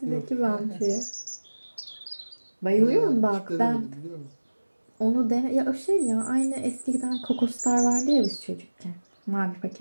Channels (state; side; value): inverted; both; correlation -1.00